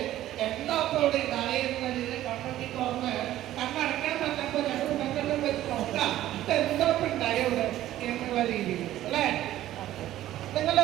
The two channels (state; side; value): quieter; left; 13.7 dB